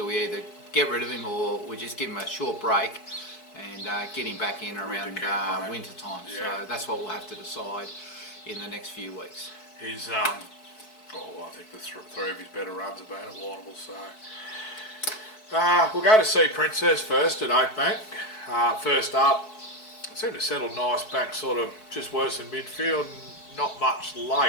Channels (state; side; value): late; right; 4.6 ms